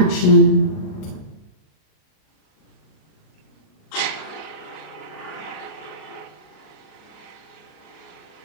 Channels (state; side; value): late; right; 38 ms